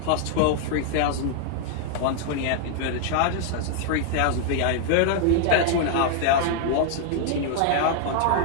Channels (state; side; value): different; both; correlation 0.00